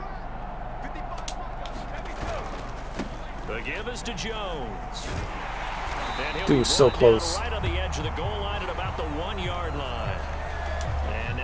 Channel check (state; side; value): identical; both; correlation 1.00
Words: The give is to Jones. Dude, so close. Right on the edge of the goal line at about the 1-yard line. And